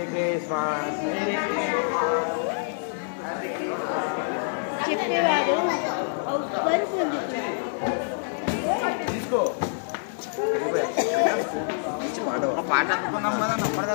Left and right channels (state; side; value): silent; right; digital silence